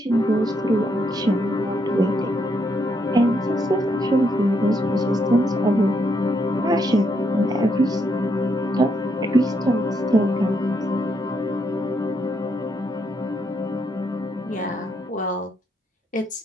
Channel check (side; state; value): both; normal; correlation 0.76